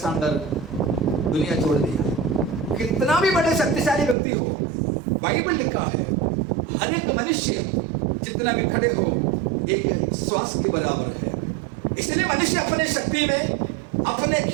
दुनिया छोड़ दिया। कितना भी बड़े शक्तिशाली व्यक्ति हो, बाइबल लिखा है हर एक मनुष्य जितना भी खड़े हो एक श्वास के बराबर है। इसलिए मनुष्य अपने शक्ति में, अपने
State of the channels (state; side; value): drops out; left; at 4.2 s